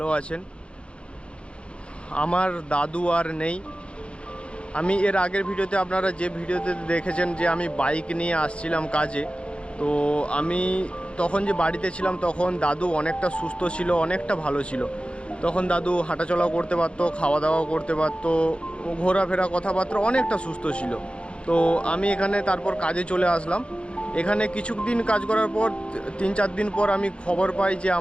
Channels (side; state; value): right; late; 0.058 ms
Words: আছেন। আমার দাদু আর নেই। আমি এর আগের ভিডিওতে আপনারা যে ভিডিওতে দেখেছেন যে আমি বাইক নিয়ে আসছিলাম কাজে, তো আমি তখন যে বাড়িতে ছিলাম তখন দাদু অনেকটা সুস্থ ছিল, অনেকটা ভালো ছিল। তখন দাদু হাঁটাচলাও করতে পারতো, খাওয়া দাওয়াও করতে পারতো, ঘোরাফেরা কথাবার্তা অনেকটা সুস্থ ছিল। তো আমি এখানে তারপর কাজে চলে আসলাম। এখানে কিছুদিন কাজ করার পর 3-4 দিন পর আমি খবর পাই যে